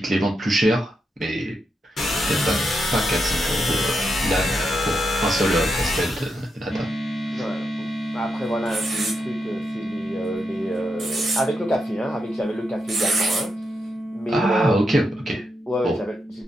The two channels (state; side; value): normal; both; correlation 0.84